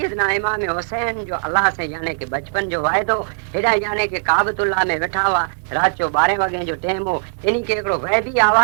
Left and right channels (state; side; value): silent; left; digital silence